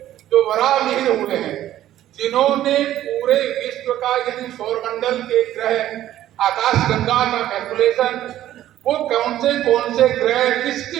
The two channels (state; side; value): quieter; left; 12.9 dB